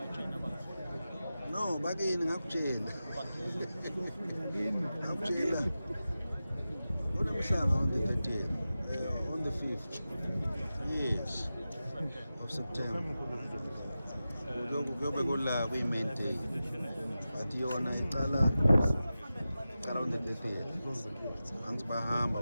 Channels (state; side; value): inverted; both; correlation -0.94